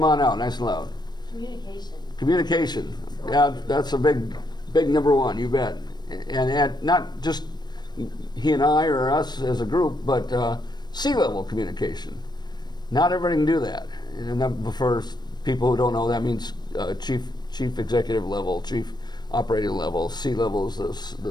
on out, nice and loud. Communication. Communication, yeah, that's a big number one, you bet. And not just he and I or us as a group, but C-level communication. Not everybody can do that. And that, for people who don't know, that means chief executive level, chief operating level. C-level is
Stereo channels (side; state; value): right; late; 0.21 ms